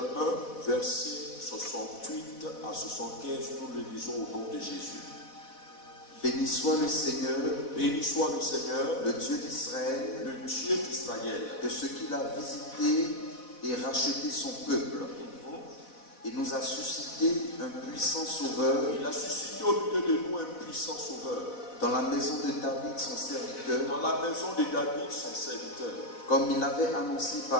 1, versets 68 à 75, nous le lisons au nom de Jésus. Béni soit le Seigneur, le Dieu d'Israël, de ce qu'il a visité et racheté son peuple. Il nous a suscité un puissant sauveur. Il a suscité au milieu de nous un puissant sauveur. Dans la maison de David, son serviteur. Comme il l'avait annoncé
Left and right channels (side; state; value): right; late; 4.1 ms